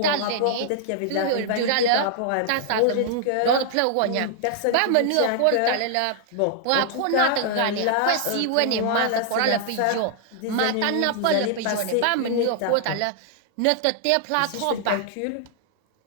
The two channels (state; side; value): different; both; correlation -0.01